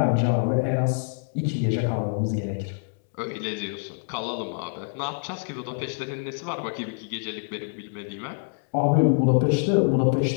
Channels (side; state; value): right; silent; digital silence